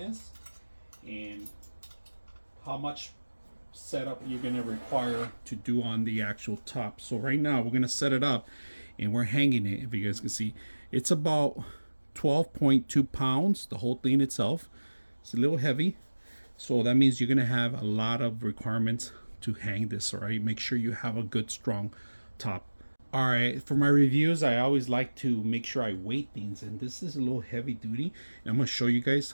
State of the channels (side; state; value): both; inverted; correlation -1.00